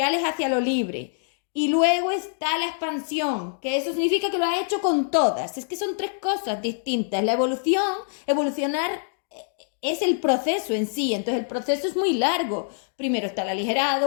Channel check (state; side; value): silent; right; digital silence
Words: hacia lo libre. Y luego está la expansión, que eso significa que lo ha hecho con todas. Es que son tres cosas distintas. La evolucionar es el proceso en sí, entonces el proceso es muy largo. Primero está el